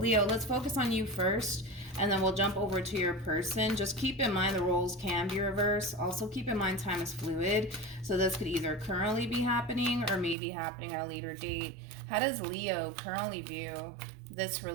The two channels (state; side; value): drops out; left; at 10.4 s